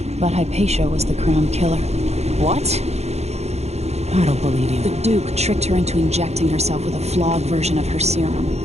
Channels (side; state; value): left; late; 0.31 ms